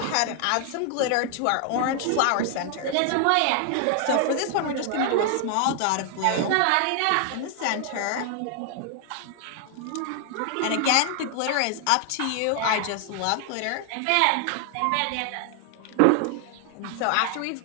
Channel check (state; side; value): different; both; correlation 0.00